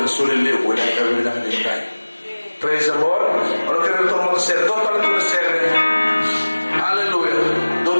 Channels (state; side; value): inverted; both; correlation -1.00